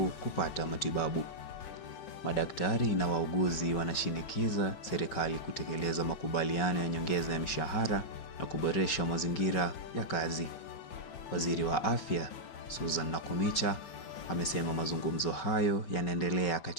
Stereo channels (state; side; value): late; right; 5.3 ms